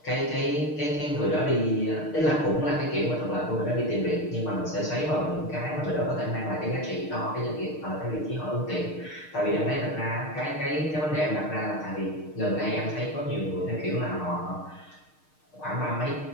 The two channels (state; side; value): late; right; 6.5 ms